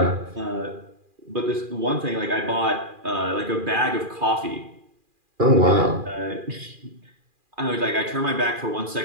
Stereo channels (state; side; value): late; left; 2.4 ms